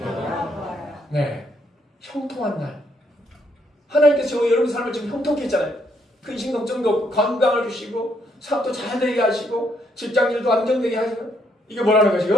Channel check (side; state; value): both; normal; correlation 0.72